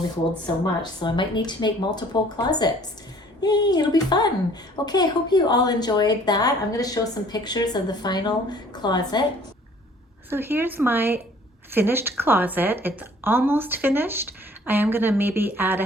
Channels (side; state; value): both; normal; correlation 0.54